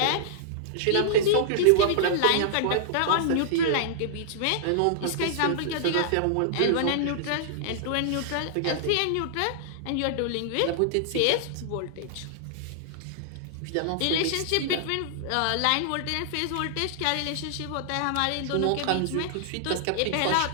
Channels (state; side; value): different; both; correlation -0.01